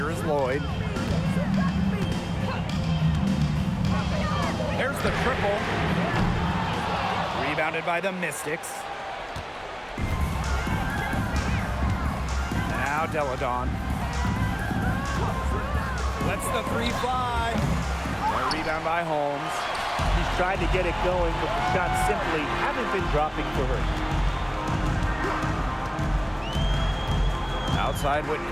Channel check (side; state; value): both; identical; correlation 1.00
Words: is Lloyd. There's the triple. Rebounded by the Mystics. Now Deladon. Lets the three fly. A rebound by Holmes. She's tried to get it going, but the shots simply haven't been dropping for her. Outside